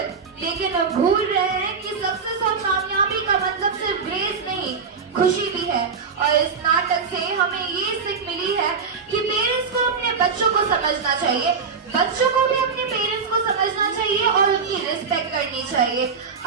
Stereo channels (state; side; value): quieter; left; 5.5 dB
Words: लेकिन अब भूल रहे हैं कि सक्सेस और कामयाबी का मतलब सिर्फ ग्रेड्स नहीं, खुशी भी है। और इस नाटक से हमें ये सीख मिली है कि पेरेंट्स को अपने बच्चों को समझना चाहिए, बच्चों को भी अपने पेरेंट्स को समझना चाहिए और उनकी रिस्पेक्ट करनी चाहिए।